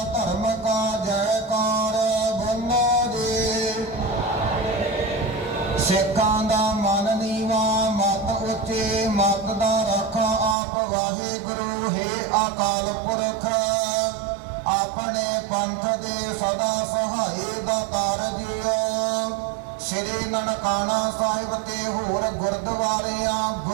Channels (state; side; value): drops out; left; at 10.6 s